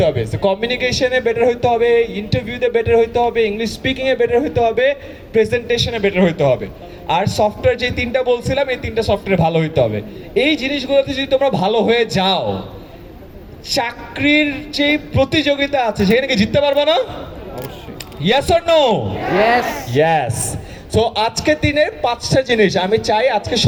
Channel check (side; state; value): both; identical; correlation 1.00